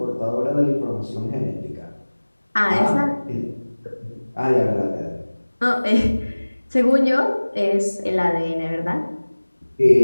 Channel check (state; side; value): inverted; both; correlation -1.00